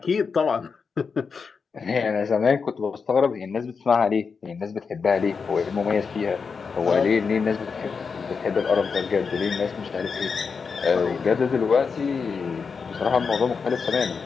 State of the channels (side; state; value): right; quieter; 5.4 dB